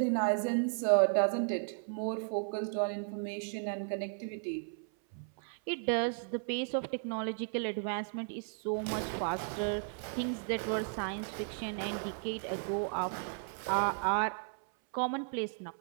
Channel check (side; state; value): left; silent; 55 dB below the other